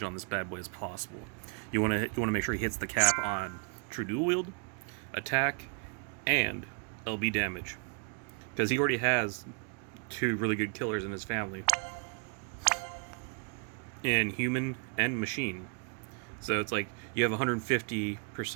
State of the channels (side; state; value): left; quieter; 39.7 dB